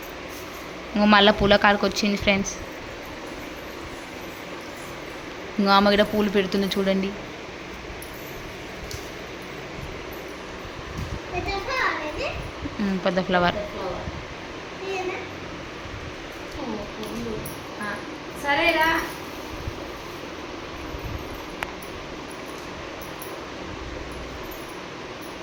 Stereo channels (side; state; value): both; identical; correlation 1.00